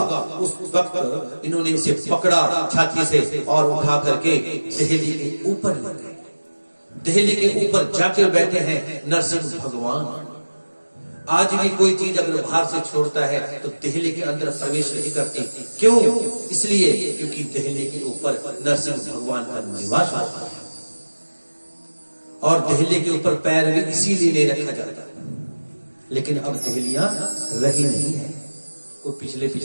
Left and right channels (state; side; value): inverted; both; correlation -1.00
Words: उस वक्त इन्होंने इसे पकड़ा छाती से और उठा करके दहली के ऊपर ले गए। दहली के ऊपर जाके बैठे हैं नरसिंह भगवान। आज भी कोई चीज अगर बाहर से छोड़ता है तो दहली के अंदर प्रवेश नहीं करती। क्यों? इसलिए क्योंकि दहली के ऊपर नरसिंह भगवान का निवास होता है, और दहली के ऊपर पैर भी इसीलिए नहीं रखा जाता। लेकिन अब दहलियां रही नहीं है। वो पिछले